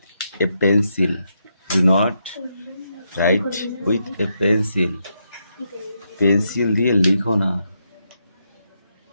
a pencil, do not right with a pencil. Pencil দিয়ে লিখো না,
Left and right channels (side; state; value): both; inverted; correlation -0.81